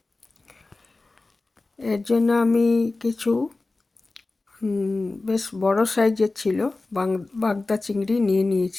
এর জন্য আমি কিছু বেশ বড় সাইজের ছিল বাগদা চিংড়ি নিয়ে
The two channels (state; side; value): quieter; right; 3.3 dB